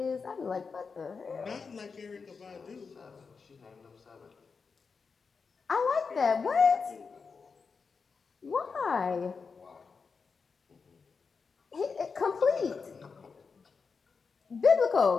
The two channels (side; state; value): right; quieter; 5.1 dB